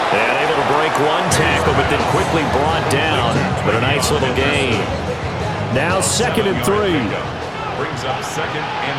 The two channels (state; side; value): identical; both; correlation 1.00